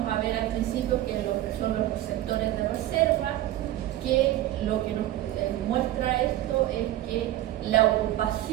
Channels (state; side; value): quieter; left; 14.5 dB